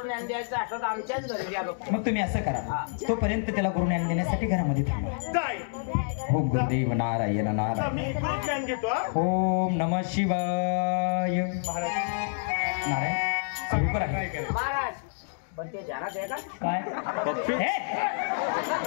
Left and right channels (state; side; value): silent; right; digital silence